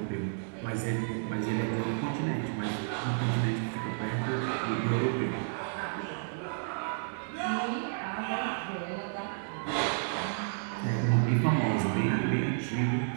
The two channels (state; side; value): silent; left; digital silence